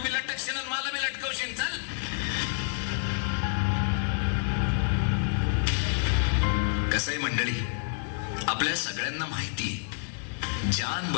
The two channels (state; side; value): silent; right; 59 dB below the other